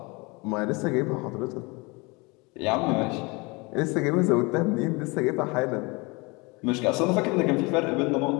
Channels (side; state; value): right; quieter; 26.9 dB